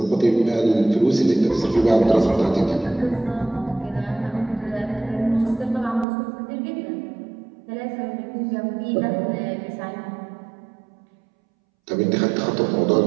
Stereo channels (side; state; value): left; drops out; at 6.1 s